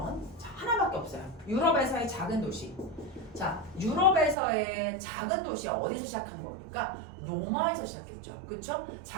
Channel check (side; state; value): left; drops out; at 4.4 s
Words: 자, 하나밖에 없어요. 유럽에서의 작은 도시. 자, 유럽에서의 작은 도시가 어디서 시작한 겁니까? 로마에서 시작했죠. 그쵸?